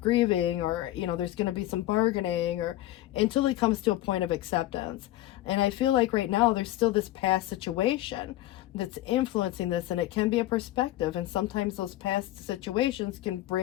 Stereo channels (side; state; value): right; quieter; 15.5 dB